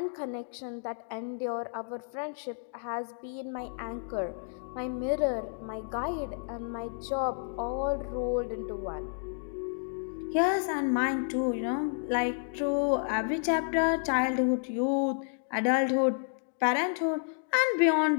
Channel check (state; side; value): silent; right; digital silence